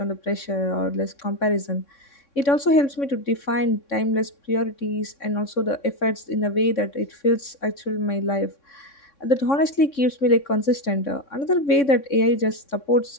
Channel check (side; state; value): right; late; 3.6 ms